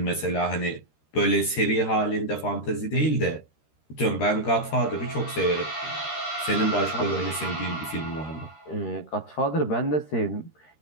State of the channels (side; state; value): right; late; 13 ms